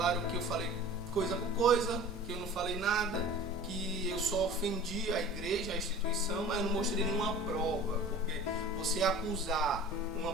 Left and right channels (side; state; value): both; normal; correlation 0.41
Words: que eu falei coisa por coisa, que eu não falei nada, que eu só ofendi a igreja, a instituição, mas eu não mostrei nenhuma prova, porque você acusar uma